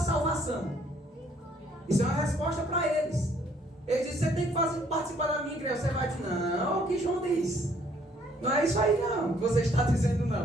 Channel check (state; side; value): normal; both; correlation 0.64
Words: Isso é uma resposta para eles. Eles dizem: você tem que participar da minha igreja. Você vai dizer: não, o que João diz? Não é isso aí não, que você está dizendo